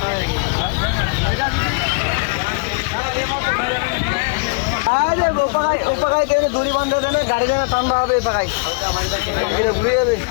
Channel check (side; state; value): right; quieter; 32.8 dB